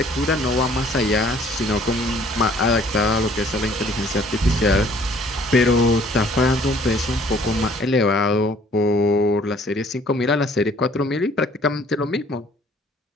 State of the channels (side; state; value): both; normal; correlation 0.57